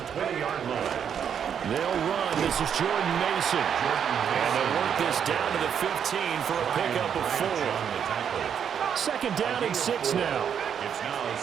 line. They'll run. This is Jordan Mason. And they'll work this down to the 15 for a pickup of 4. Second down and 6 now. It's now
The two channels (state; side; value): quieter; left; 8.1 dB